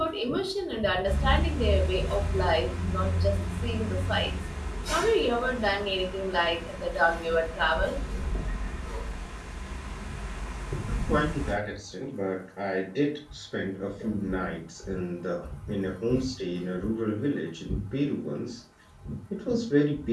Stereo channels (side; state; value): both; identical; correlation 1.00